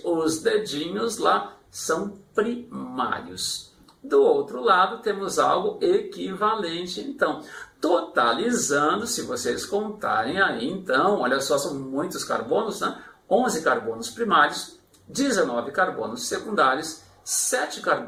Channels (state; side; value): identical; both; correlation 1.00